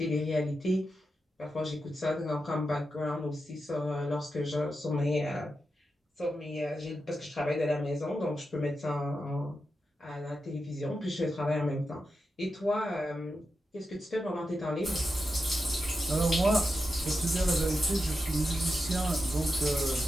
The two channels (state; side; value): normal; both; correlation 0.89